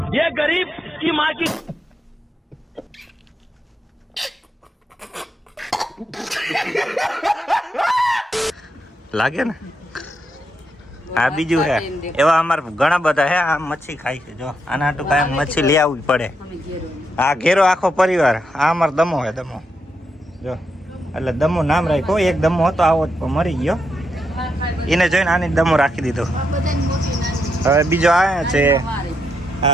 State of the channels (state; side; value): normal; both; correlation 0.82